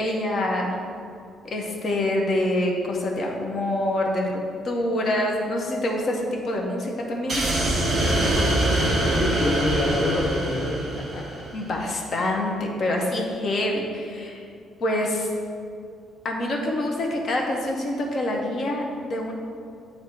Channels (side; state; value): both; normal; correlation 0.70